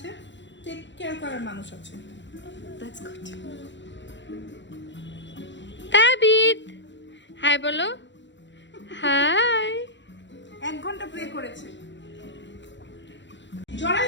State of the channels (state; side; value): late; right; 0.53 ms